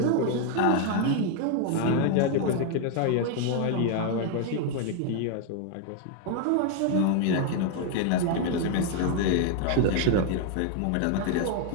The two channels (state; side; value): different; both; correlation 0.01